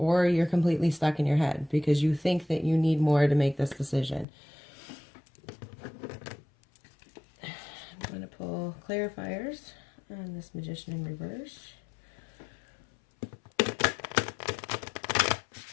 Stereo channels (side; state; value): right; drops out; at 4.2 s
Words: you're completely stuck in your head because you think that you need more to make this decision. I'm going to pull clarifiers on this Magician in reverse.